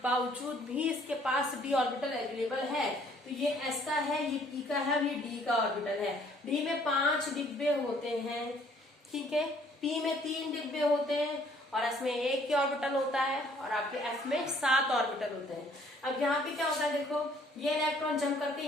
भी इसके पास d ऑर्बिटल अवेलेबल है, तो ये s का है, ये p का है और ये d का ऑर्बिटल है। d में 5 डिब्बे होते हैं, ठीक है, p में 3 डिब्बे होते हैं और s में 1 की ऑर्बिटल होता है और आपके f में 7 ऑर्बिटल होते हैं। अब यहाँ पे क्या होता है, देखो ये इलेक्ट्रॉन जंप करके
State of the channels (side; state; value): both; normal; correlation 0.60